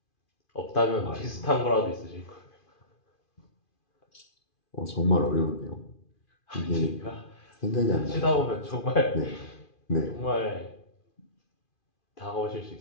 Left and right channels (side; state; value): right; late; 2.4 ms